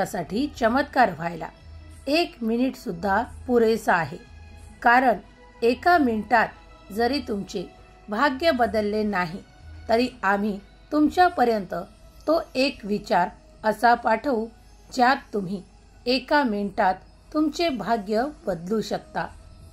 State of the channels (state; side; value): identical; both; correlation 1.00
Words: चमत्कार व्हायला 1 मिनिट सुद्धा पुरेसा आहे. कारण 1 मिनिटात जरी तुमचे भाग्य बदलले नाही तरी आम्ही तुमच्यापर्यंत तो एक विचार असा पाठवू ज्यात तुम्ही 1 मिनिटात तुमचे भाग्य बदलू शकता.